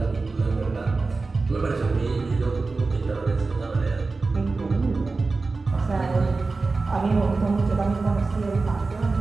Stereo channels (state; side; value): quieter; left; 3.8 dB